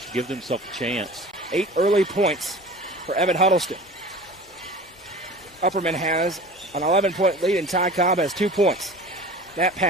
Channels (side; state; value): both; normal; correlation 0.39